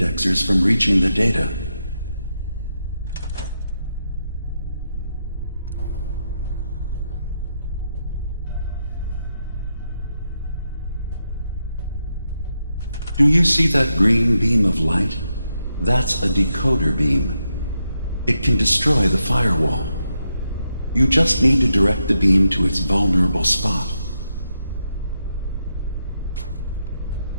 from reaching the data. Do you see that green beam of light? That's a decoder beam. It can destroy the firewall. You just need to direct the beam to its vulnerable spot.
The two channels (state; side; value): inverted; both; correlation -0.83